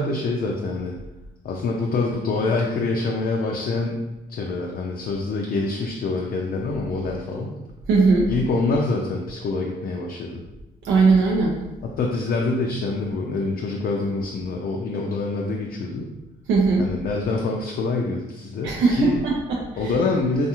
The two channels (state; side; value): normal; both; correlation 0.62